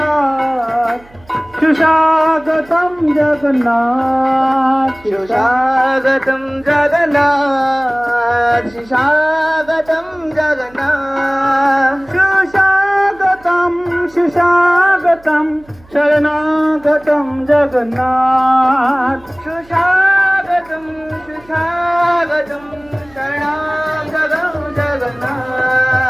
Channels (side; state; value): right; noise; hum, 26 dB below the sound